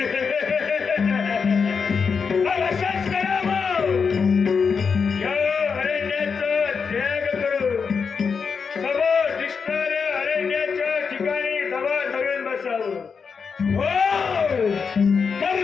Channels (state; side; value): quieter; right; 5.7 dB